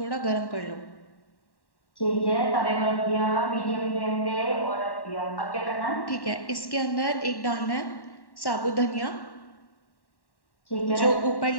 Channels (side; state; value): right; late; 1.1 ms